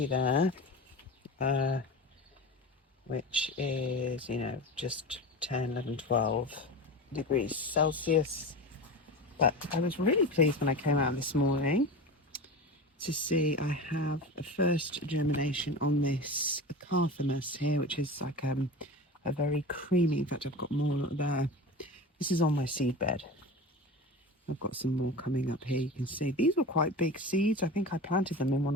there, which is, just 10, 11, 12 degrees Celsius. But I was really pleased when I came out this morning to see I have a first germination on this Carthamus here, which is like a very creamy, in fact I've got more there. This is on my seed bed. I've got some more coming up here. You can see these were quite big seeds. I think I planted them in one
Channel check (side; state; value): both; normal; correlation 0.29